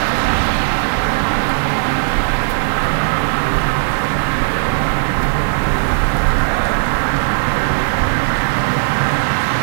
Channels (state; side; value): silent; left; 56 dB below the other